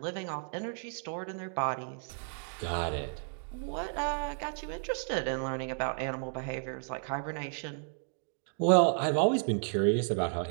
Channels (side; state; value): left; silent; 56 dB below the other